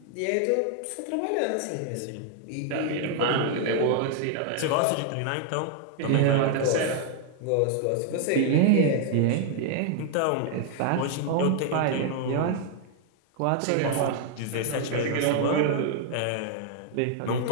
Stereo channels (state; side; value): different; both; correlation 0.00